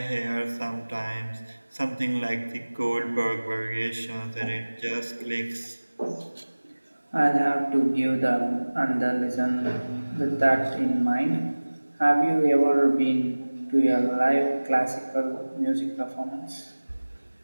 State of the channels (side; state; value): both; inverted; correlation -1.00